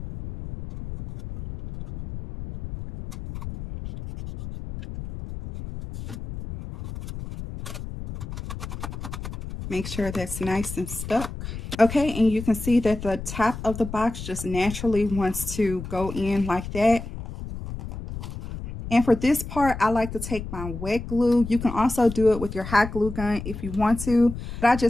Make sure that's nice and stuck. Okay, and you can see that the top of the box just naturally wants to go in like that. And for this part, I like to take my wet glue. You can also do it with your hot glue gun if you want to. But I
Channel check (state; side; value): noise; left; rumble, 9 dB below the sound